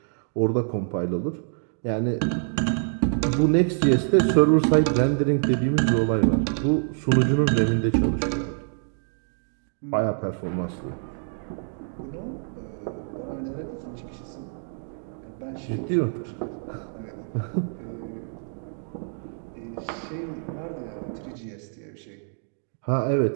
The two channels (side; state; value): left; silent; digital silence